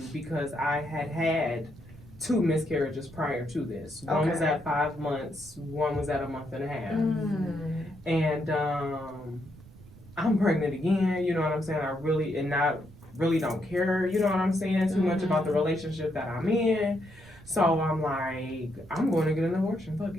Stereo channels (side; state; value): right; noise; rumble, 21 dB below the sound